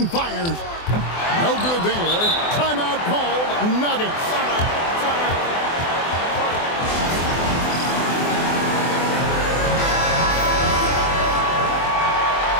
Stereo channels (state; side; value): late; right; 24 ms